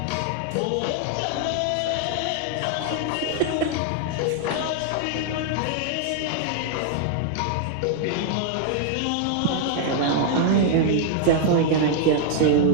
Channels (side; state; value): both; different; correlation 0.00